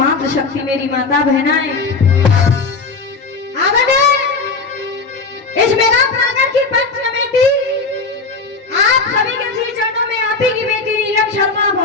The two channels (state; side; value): quieter; right; 4.1 dB